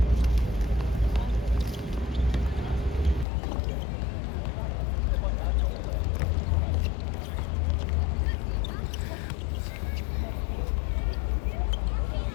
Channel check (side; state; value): right; drops out; at 3.2 s